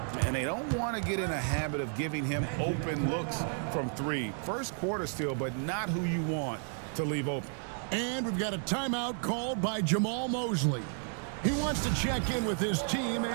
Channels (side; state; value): left; silent; 56 dB below the other